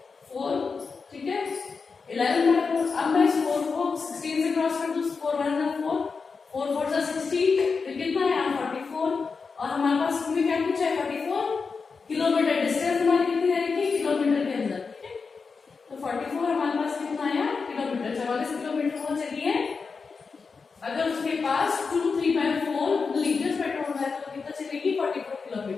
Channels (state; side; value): quieter; right; 4.9 dB